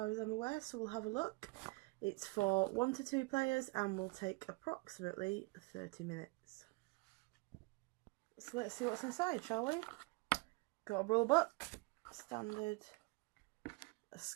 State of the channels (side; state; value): left; quieter; 25.8 dB